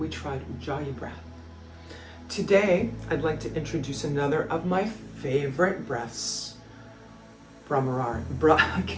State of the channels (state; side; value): identical; both; correlation 1.00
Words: we tried Ujjayi breath. Today, I'd like to introduce another of my favorite breaths,